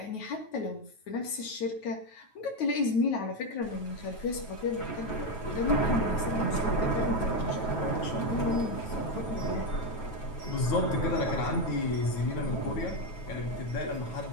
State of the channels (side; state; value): right; late; 9.2 ms